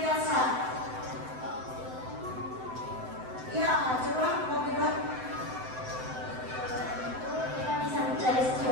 Ya, coba mau bilang. Kita bisa mencari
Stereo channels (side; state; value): left; late; 7.8 ms